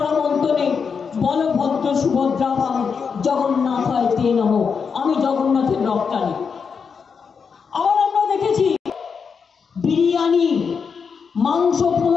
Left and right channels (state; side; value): quieter; right; 5.9 dB